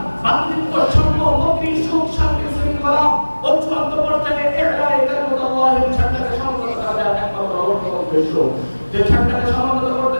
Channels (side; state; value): both; inverted; correlation -1.00